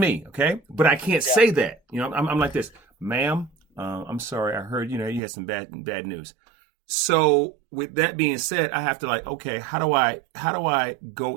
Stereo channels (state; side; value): drops out; left; at 5.2 s